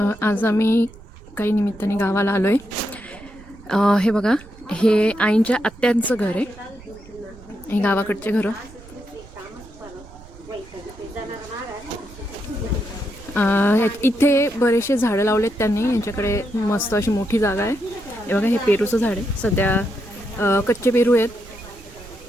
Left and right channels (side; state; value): right; noise; rumble, 20 dB below the sound